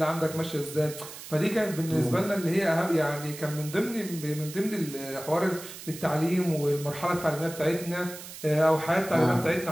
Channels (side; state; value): right; noise; hiss, 13 dB below the sound